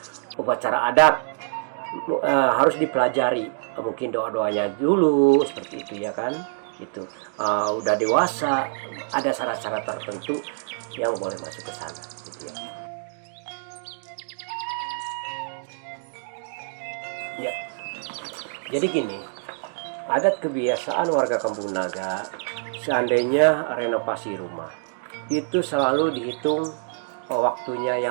upacara adat, harus dipelajari. Mungkin doa-doanya dulu seperti itu ya kan. Itu udah dewasa, ada syarat-syarat tertentu yang boleh masuk ke sana gitu ya. Ya. Jadi gini, adat kebiasaan warga Kampung Naga, seandainya renovasi rumah itu selalu dihitung waktunya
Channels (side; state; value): left; silent; digital silence